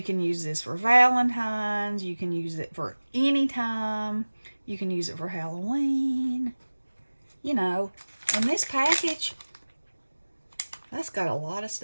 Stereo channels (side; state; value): both; inverted; correlation -1.00